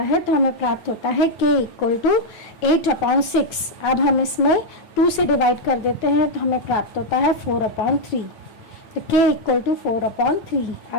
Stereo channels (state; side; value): late; right; 9.0 ms